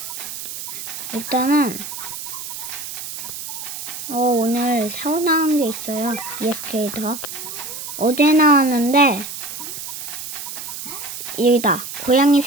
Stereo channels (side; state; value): right; noise; hiss, 8 dB below the sound